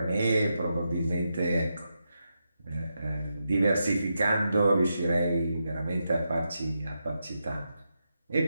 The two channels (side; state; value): both; inverted; correlation -0.86